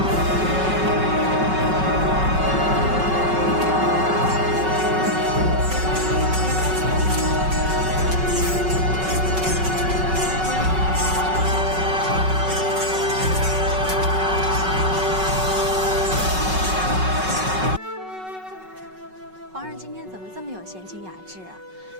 皇上今天怎么这么有闲情雅致啊？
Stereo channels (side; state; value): left; late; 5.3 ms